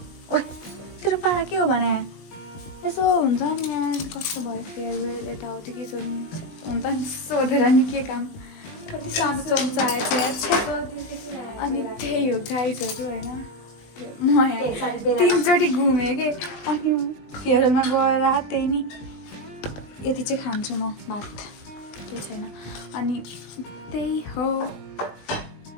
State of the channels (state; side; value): late; right; 19 ms